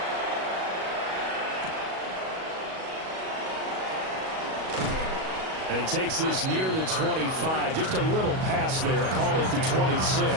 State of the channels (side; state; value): left; late; 37 ms